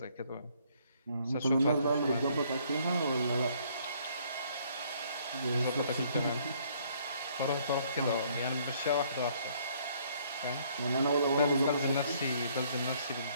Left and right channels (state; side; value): inverted; both; correlation -0.64